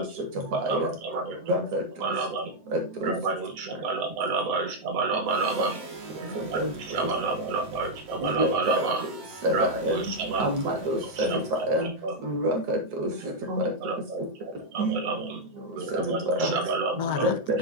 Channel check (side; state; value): left; late; 7.8 ms